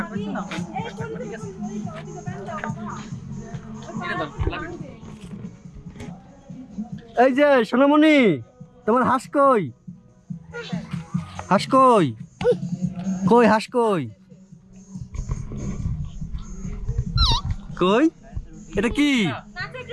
এই যে সোনামণি, তোমার হাঁস কই? হাঁস কই? কই হাঁস কই? কই? এটা কি?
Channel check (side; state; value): both; identical; correlation 1.00